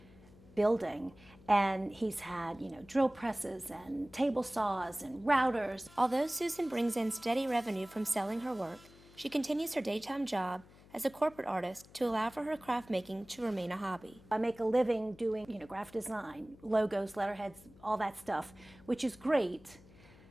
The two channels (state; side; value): noise; left; hum, 23 dB below the sound